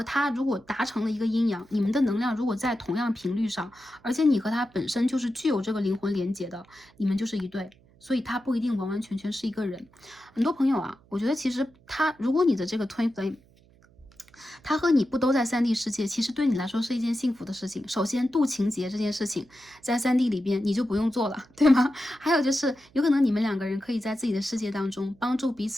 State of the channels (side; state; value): right; noise; hum, 29 dB below the sound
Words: 他如果达成了一个阴阳，你们的能量如果在同样频率上，而且你和他本身就是具有这个灵魂连接的，你们就是一对。所以他不一定完完全全是一个人。很多朋友啊，我觉得其实如果你的这个 twin flame， 他和你不都在3D 世界，其实对你来说是一件幸福的事情。首先，渡情劫这件事情在3D 里边你就不用做了，对吗？还有就是有可能你们2个人可以在自己的世界当中帮助彼